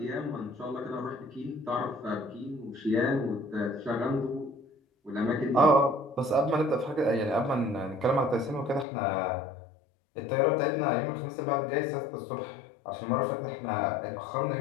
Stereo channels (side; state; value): right; drops out; at 8.8 s